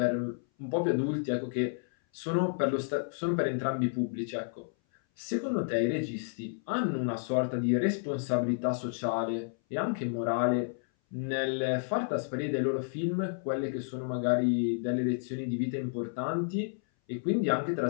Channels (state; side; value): silent; right; 57 dB below the other